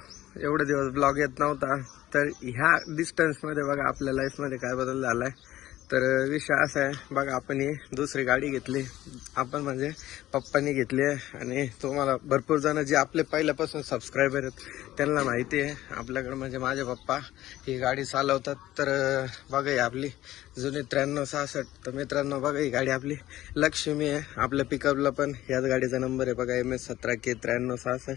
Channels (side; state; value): right; quieter; 14.8 dB